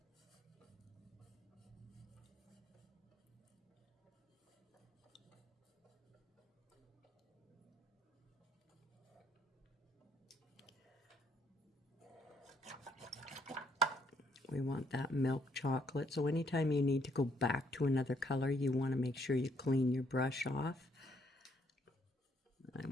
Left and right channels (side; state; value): both; normal; correlation 0.69